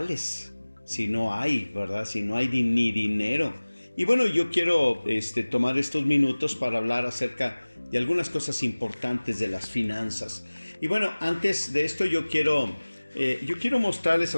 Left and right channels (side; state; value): both; inverted; correlation -1.00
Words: Si no hay, ¿verdad? Si no hay ni dinero. Y bueno, yo quiero tomar estos minutos para hablar acerca de algunas cosas importantes de las finanzas. Y bueno, antes de esto yo quiero mostrarles a